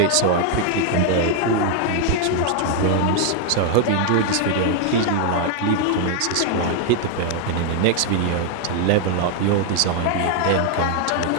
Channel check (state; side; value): different; both; correlation 0.00